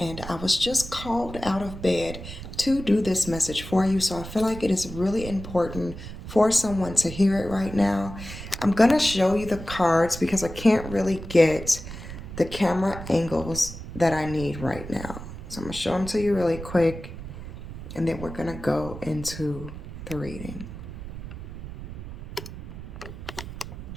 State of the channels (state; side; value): noise; right; rumble, 11 dB below the sound